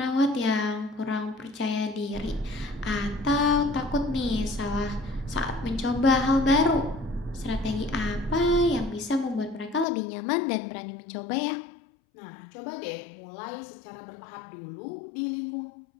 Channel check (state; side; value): drops out; right; at 9.9 s